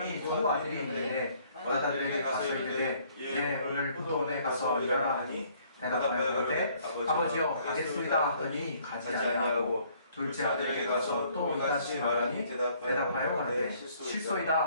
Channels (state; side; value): inverted; both; correlation -0.62